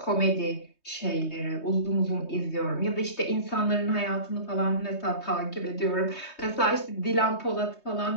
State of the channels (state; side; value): late; right; 3.2 ms